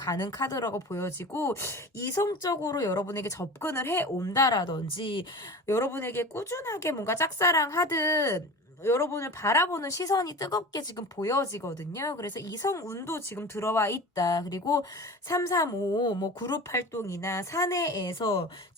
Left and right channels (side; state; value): both; normal; correlation 0.33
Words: 카드라고 보여지고, 이성적으로 여러분에게 접근을 해 온다라든지 여러분에게 꾸준하게 뭔가 짝사랑하듯 여러분을 바라보는 시선이 뜨겁게 지금 보여지거든요. 그래서 이성운도 지금 들어와 있다. 그리고 335 뭐 그룹 활동이나 사내에서,